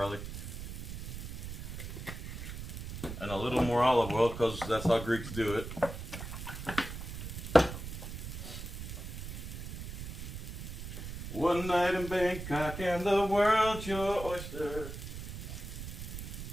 And a little more olive oil because that's how Greeks do it. One night in Bangkok and the world's your oyster.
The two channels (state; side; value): noise; right; rumble, 8 dB below the sound